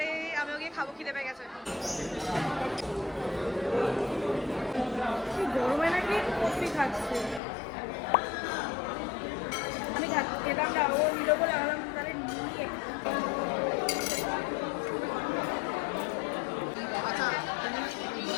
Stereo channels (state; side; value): drops out; right; at 7.4 s